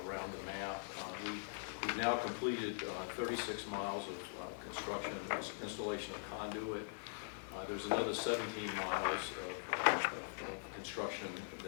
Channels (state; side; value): silent; right; digital silence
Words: around the map. We've now completed 36 miles of construction, installation of conduit. There's another 17 miles of construction